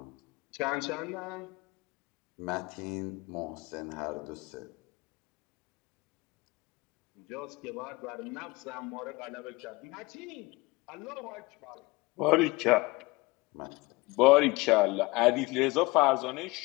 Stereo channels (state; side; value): quieter; right; 23.4 dB